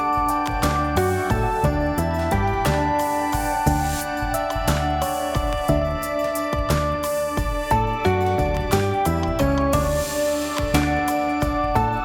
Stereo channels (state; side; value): identical; both; correlation 1.00